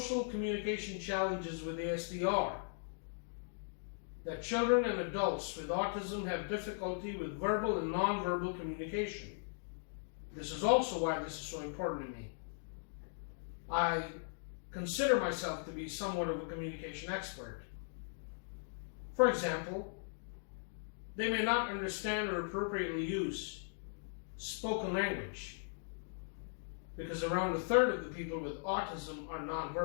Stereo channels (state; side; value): silent; right; digital silence